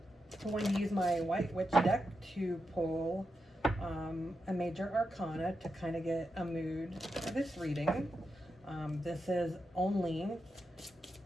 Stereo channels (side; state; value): both; normal; correlation 0.87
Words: I'm going to use my White Witch deck to pull a major arcana to kind of get a mood for this reading. This is only